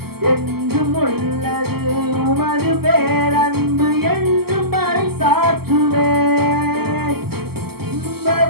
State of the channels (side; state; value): left; late; 0.96 ms